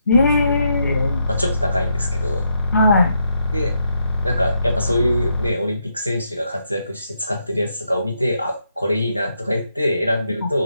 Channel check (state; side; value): inverted; both; correlation -0.79